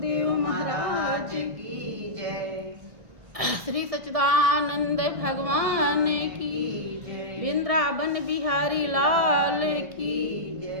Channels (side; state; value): left; late; 1.7 ms